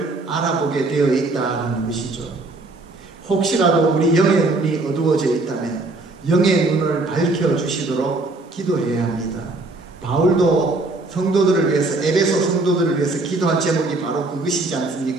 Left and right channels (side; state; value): left; quieter; 3.2 dB